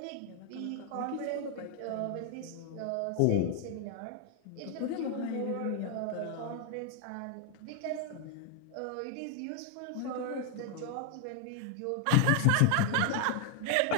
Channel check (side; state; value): both; different; correlation 0.00